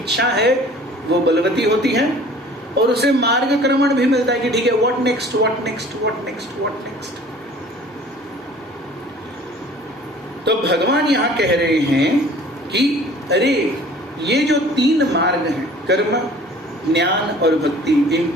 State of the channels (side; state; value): both; normal; correlation 0.49